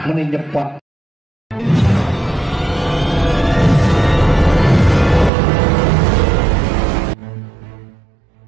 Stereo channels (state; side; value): drops out; left; at 5.3 s